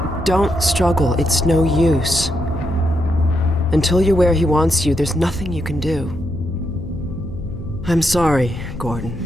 Don't struggle. It's no use. Until you're where he wants you, there's nothing you can do. I'm sorry, Gordon.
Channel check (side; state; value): left; noise; hum, 12 dB below the sound